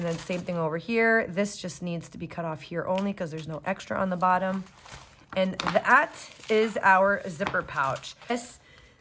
then same thing over here. This just needs to be cut off here only because there's no extra on the bottom. And that is our zipper pouch. This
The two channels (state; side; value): identical; both; correlation 1.00